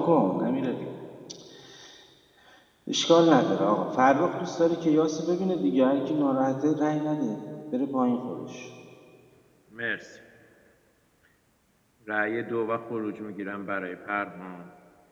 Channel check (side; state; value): both; identical; correlation 1.00